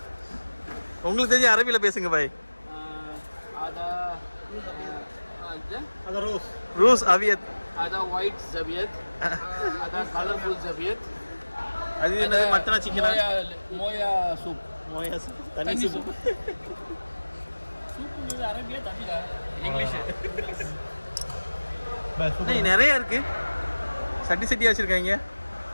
உங்களுக்கு தெரிஞ்ச அரபியில பேசுங்க பாய். ada rose. Rose aviat. ada white zabiat. ada colorful zabiat. அது என்னது? மட்டனா சிக்கனா? மோயா சூப். மோயா சூப். தண்ணி சூப். சூப்புங்கிறது அரபியா தமிழா? இங்கிலீஷ். நிறைய இருக்கு. சட்டி சட்டியா வச்சிருக்காங்க.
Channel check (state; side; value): inverted; both; correlation -1.00